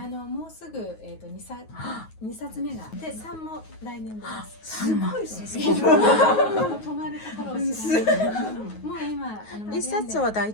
うすぐ2冊目がで3も来年出ます。すごいですね。止まるところを知らない。もう今1冊は大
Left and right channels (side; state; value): right; late; 9.4 ms